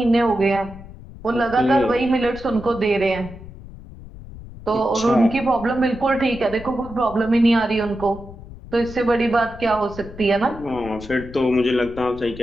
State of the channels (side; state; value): left; noise; rumble, 15 dB below the sound